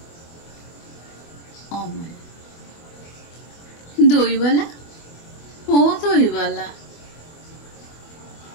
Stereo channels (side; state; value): right; late; 24 ms